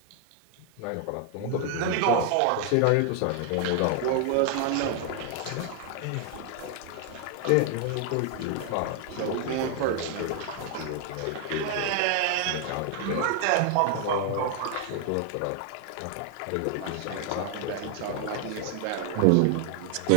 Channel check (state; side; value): different; both; correlation 0.00